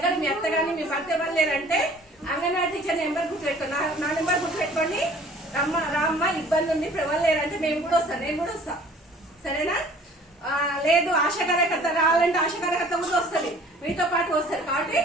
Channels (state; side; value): normal; both; correlation 0.51